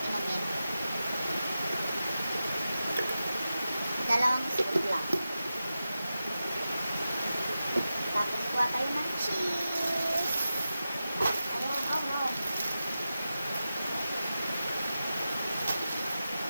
inumin. Dalawang scoop lang. Tapos kuha tayo ng cheese. Ayan, oh no.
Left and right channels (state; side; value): inverted; both; correlation -0.92